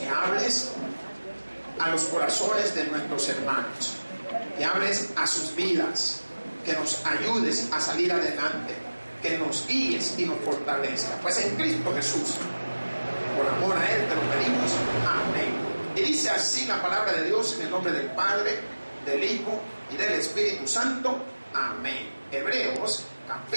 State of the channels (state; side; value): inverted; both; correlation -1.00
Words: hables a los corazones de nuestros hermanos, que hables a sus vidas, que nos ayudes a salir adelante, que nos guíes y nos fortalezca. Pues en Cristo Jesús, por amor a Él te lo pedimos. Amén. Y dice así la palabra de Dios en el nombre del Padre, del Hijo y del Espíritu Santo. Amén. Hebreos